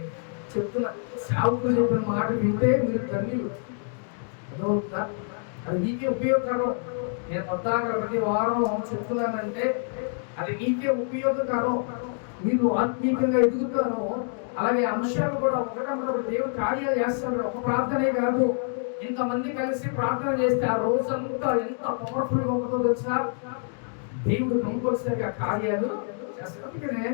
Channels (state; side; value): silent; right; 56 dB below the other